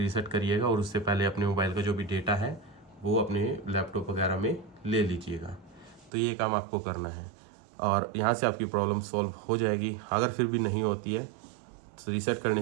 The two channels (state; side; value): drops out; left; at 6.1 s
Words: रीसेट करिएगा। और उससे पहले अपने मोबाइल का जो भी डेटा है वो अपने लैपटॉप वगैरह में ले लीजिएगा। तो ये काम आपको करना है और यहाँ से आपकी प्रॉब्लम सॉल्व हो जाएगी। अगर फिर भी नहीं होती है तो रीसेट करने